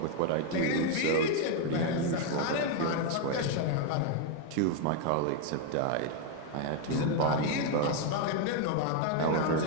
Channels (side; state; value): both; different; correlation 0.01